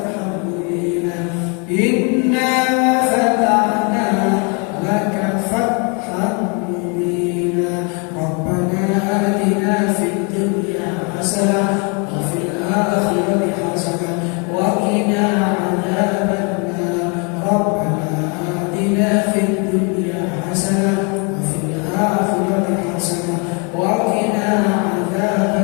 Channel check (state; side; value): quieter; right; 34.5 dB